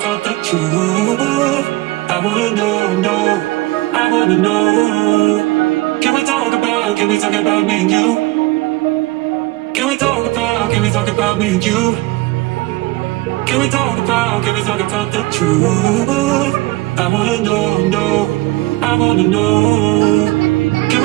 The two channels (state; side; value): quieter; left; 20.3 dB